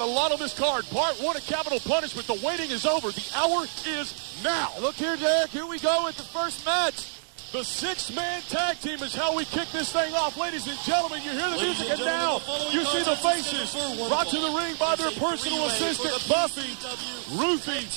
lot on this card. Part 1 of Capital Punishment. The waiting is over. The hour is now. Look here, Derek. Here we go with the first match. The 6-man tag team is how we kick this thing off. Ladies and gentlemen, you hear the music, and now you see the faces brought to the ring by their personal assistant, Buffy, Ruffy,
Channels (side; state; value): left; silent; digital silence